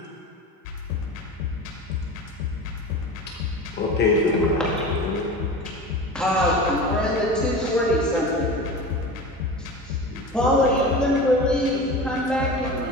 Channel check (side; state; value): both; normal; correlation 0.32